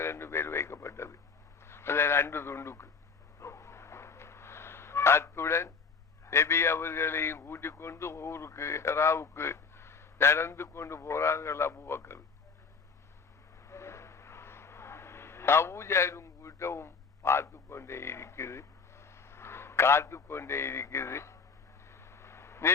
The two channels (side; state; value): right; quieter; 5.2 dB